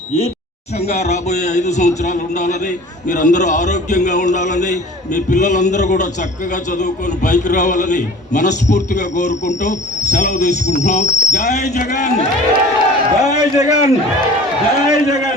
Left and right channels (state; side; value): normal; both; correlation 0.43